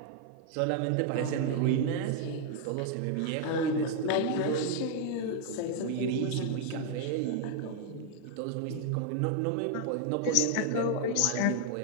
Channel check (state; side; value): different; both; correlation 0.00